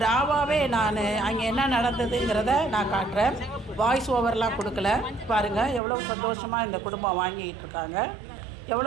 ராவாகவே நான் அங்கே என்ன நடந்ததுங்கிறத நான் காட்டுறேன். வாய்ஸ் ஓவர்லாம் கொடுக்கல. பாருங்கள் எவ்வளோ சந்தோஷமாக இந்த குடும்பம் வாங்கிக்கிட்டு இருக்காங்க.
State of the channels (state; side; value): drops out; left; at 5.8 s